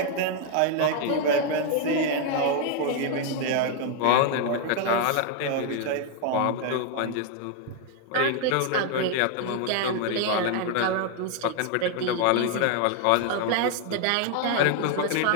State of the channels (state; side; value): different; both; correlation 0.00